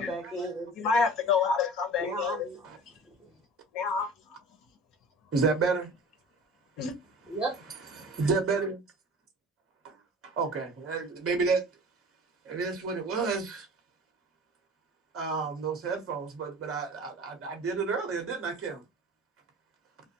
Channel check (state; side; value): normal; both; correlation 0.40